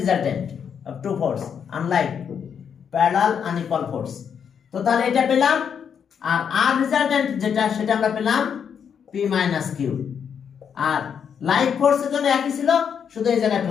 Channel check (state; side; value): quieter; right; 7.5 dB